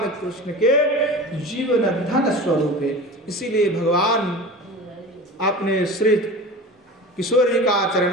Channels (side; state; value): both; normal; correlation 0.34